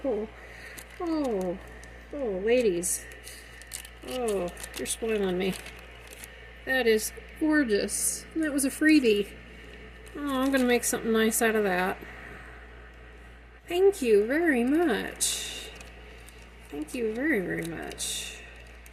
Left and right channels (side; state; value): both; identical; correlation 1.00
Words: Oh, ladies. Oh, you're spoiling me. That is gorgeous. And that was a freebie. Oh, I'm going to make something nice out of that. Thank you very much. Thank you very, very much.